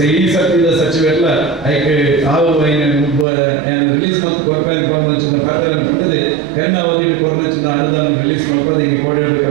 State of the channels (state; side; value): drops out; left; at 3.2 s